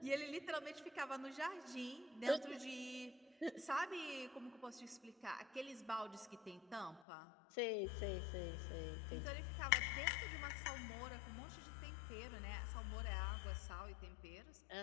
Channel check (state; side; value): drops out; right; at 7.1 s